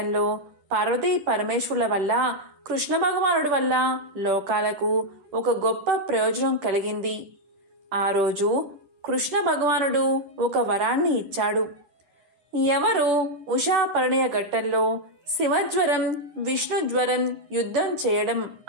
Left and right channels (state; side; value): late; left; 11 ms